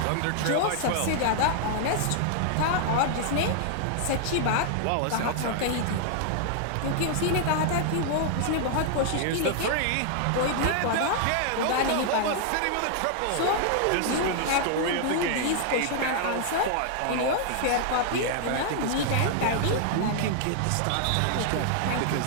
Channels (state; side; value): different; both; correlation -0.01